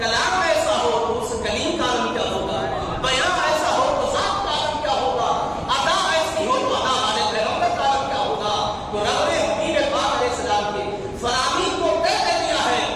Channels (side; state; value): both; identical; correlation 1.00